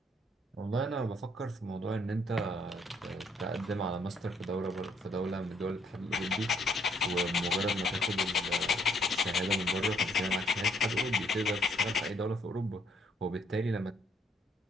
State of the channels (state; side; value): normal; both; correlation 0.67